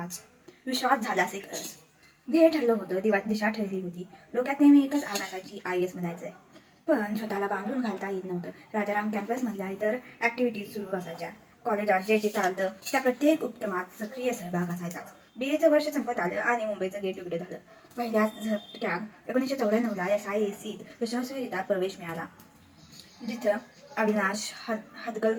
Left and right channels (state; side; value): identical; both; correlation 1.00